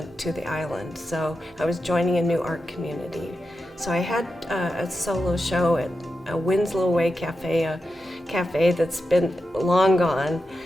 to the island. So I was joining a new art community. So I had a solo show at a Winslow Way Cafe, a cafe that's been long gone,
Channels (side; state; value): both; normal; correlation 0.90